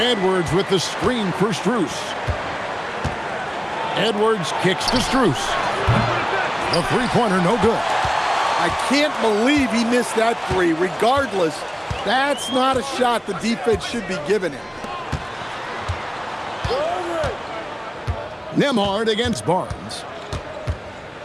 with the screen for Strus. Edwards kicks to Strus. The three-pointer, no good. I can't believe he missed that three. Regardless, that's not a shot the defense should be giving him. Nembhard against Barnes.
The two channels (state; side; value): identical; both; correlation 1.00